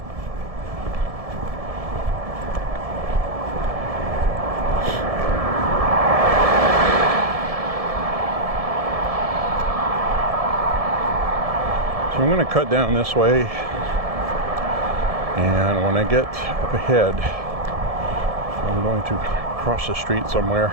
So I'm going to cut down this way, and when I get up ahead, I'm going to cross the street somewhere,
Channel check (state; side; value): late; left; 1.7 ms